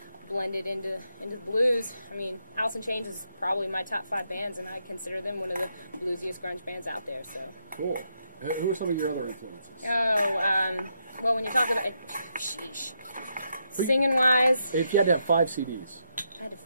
blended into blues. I mean, Alice in Chains is probably my top 5 bands, and I consider them one of the bluesiest grunge bands out there. So cool. Who are some of your other influences? Well, when you talk about it, singing wise, if you had to have 5 CDs, I had to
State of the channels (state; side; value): inverted; both; correlation -0.80